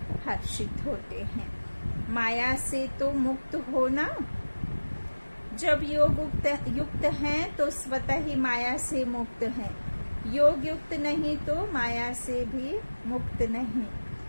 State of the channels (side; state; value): both; inverted; correlation -1.00